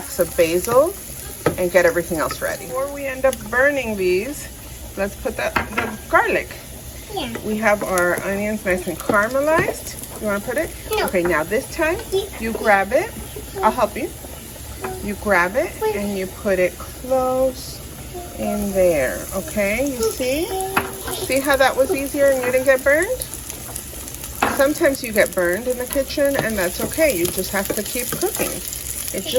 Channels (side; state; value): both; identical; correlation 1.00